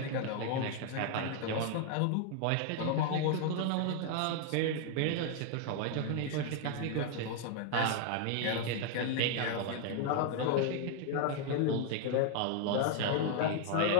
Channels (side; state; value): both; different; correlation 0.00